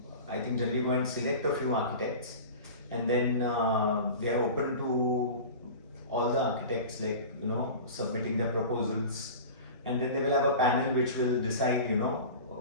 I think, generally go and select a few architects, and then they are open to all the architects, submitting their proposals, and then they will have a panel which will decide,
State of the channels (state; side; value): inverted; both; correlation -0.34